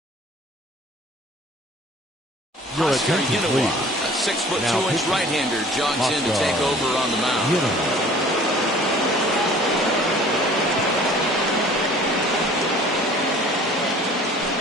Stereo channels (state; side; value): normal; both; correlation 0.49